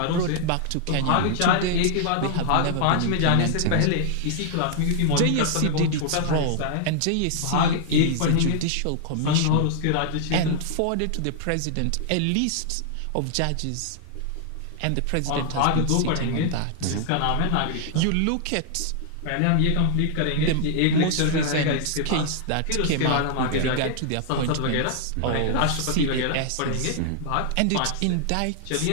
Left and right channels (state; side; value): different; both; correlation 0.00